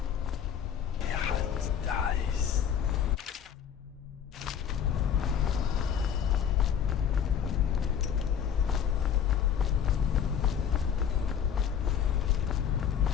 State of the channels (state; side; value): quieter; right; 8.4 dB